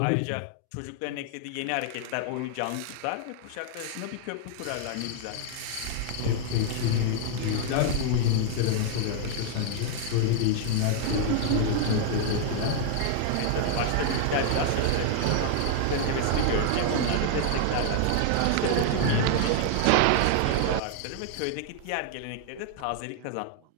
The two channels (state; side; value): different; both; correlation 0.00